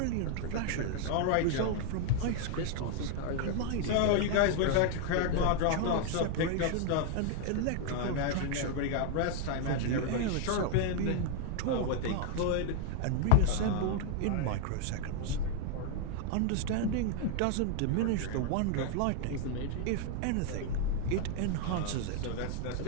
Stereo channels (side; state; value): both; different; correlation 0.00